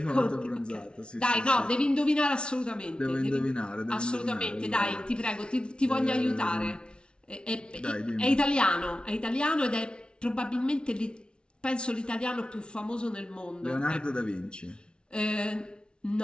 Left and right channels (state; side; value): late; right; 0.056 ms